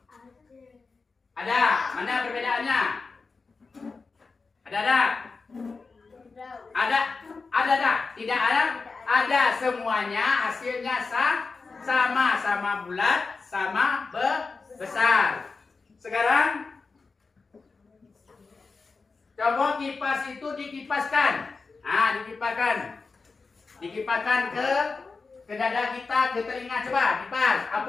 Ada. Mana perbedaannya? Ada enggak? Ada. Ada enggak? Tidak ada? Ada, semuanya hasilnya sama bulat, sama besar. Sekarang coba kipas itu dikipaskan. Nah, dikipaskan ke dada kita, ke telinga. Coba kipas.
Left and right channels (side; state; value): right; quieter; 4.3 dB